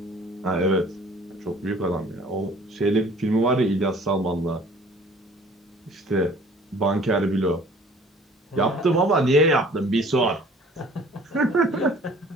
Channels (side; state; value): both; normal; correlation 0.51